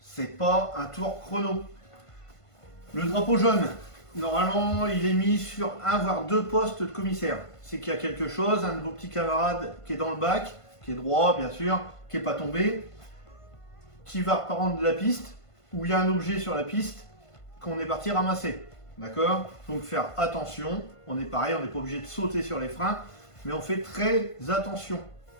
pas un tour chrono. Le drapeau jaune, normalement, il est mis sur un voire deux postes de commissaire. C'est qu'il y a quelque chose, un de vos petits camarades qui est dans le bac, qui est droit bien sûr, qui n'est pas tombé, qui va reprendre de la piste, où il y a un objet sur la piste qu'on est parti ramasser. D'accord? Donc faire attention, on est pareil, on n'est pas obligé de sauter sur les freins, mais on fait très attention.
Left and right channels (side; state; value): right; late; 1.5 ms